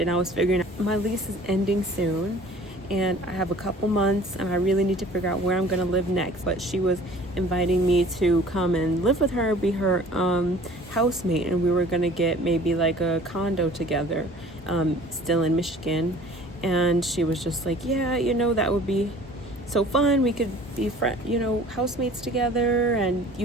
and I was figuring out my lease is ending soon and I have a couple months and I really need to figure out where I'm going to live next. But she was inviting me to come and live with her, be her housemate, and we were going to get maybe like a condo together, still in Michigan. And she was just like, yeah, that would be so fun. We could be housemates together, and you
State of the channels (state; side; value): normal; both; correlation 0.48